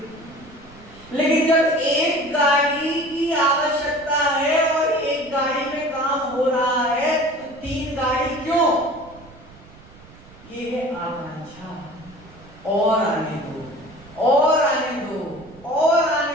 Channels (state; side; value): noise; right; rumble, 22 dB below the sound